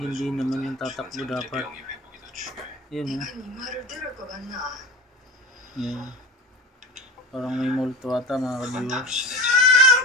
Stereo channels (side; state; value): both; normal; correlation 0.31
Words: naman yung tatakbo dapat. Ayan Ayan. Parang may multo ata mga ka-viewers.